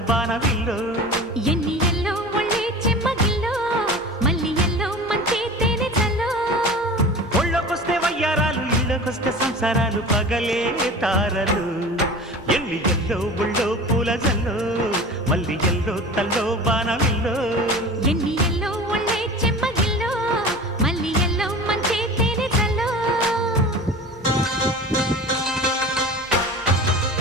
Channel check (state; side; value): normal; both; correlation 0.36